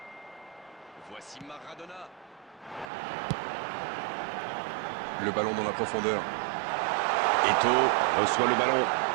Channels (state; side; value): drops out; left; at 2.9 s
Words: Voici Maradona. Le ballon dans la profondeur. Eto'o reçoit le ballon.